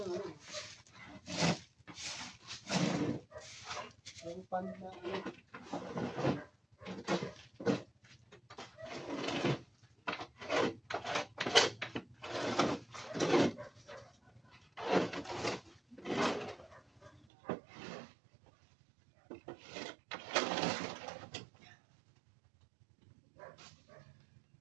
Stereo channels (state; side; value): drops out; left; at 17.2 s